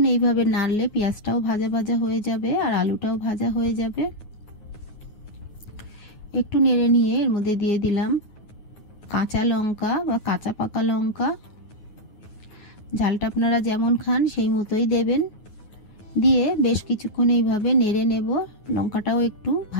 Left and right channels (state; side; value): late; right; 9.5 ms